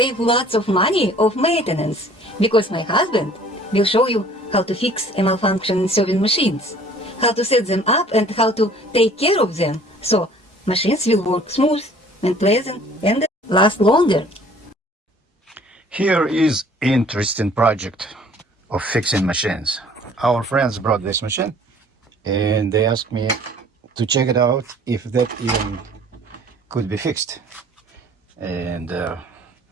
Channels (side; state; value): both; normal; correlation 0.53